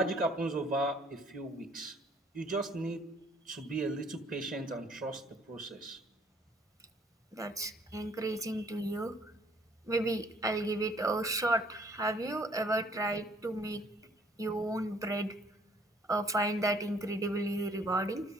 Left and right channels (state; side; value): normal; both; correlation 0.61